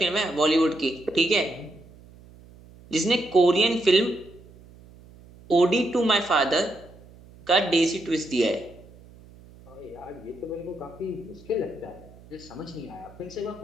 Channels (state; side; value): noise; right; hum, 23 dB below the sound